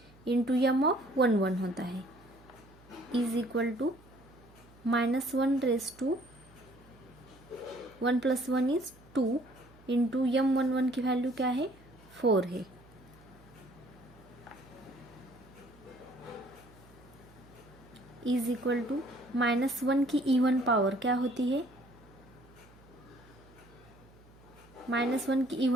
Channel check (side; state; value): right; noise; hum, 25 dB below the sound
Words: इंटू M11 होता है is equal to -1/1 + 1 is 2 into M11 की वैल्यू क्या है? 4 है. इज इक्वल टू -1 की इवन पावर क्या होती है? -1 की